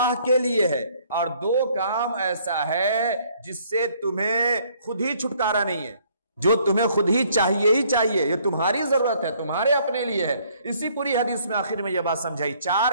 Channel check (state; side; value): inverted; both; correlation -0.63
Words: کے لیے ہے، اور 2 کام ایسا ہے جس سے تمہیں خود ہی چھٹکارا نہیں ہے، جو تمہیں خود ہی چاہیے ہی چاہیے، یہ تمہاری ضرورت ہے، تمہارے اپنے لیے ہے۔ اسی پوری حدیث میں آخر میں یہ بات سمجھائی،